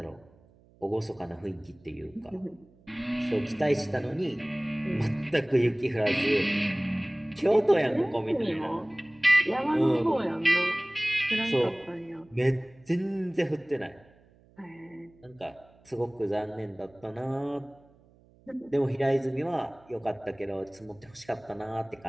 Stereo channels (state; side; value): noise; right; hum, 29 dB below the sound